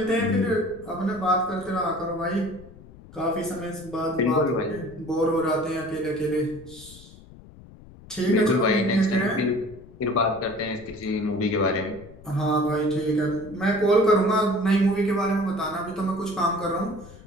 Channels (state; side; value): noise; left; rumble, 20 dB below the sound